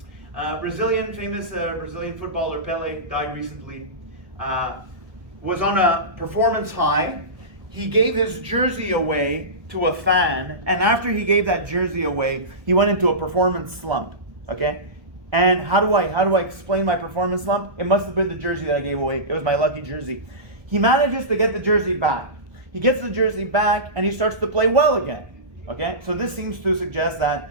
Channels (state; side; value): late; left; 1.2 ms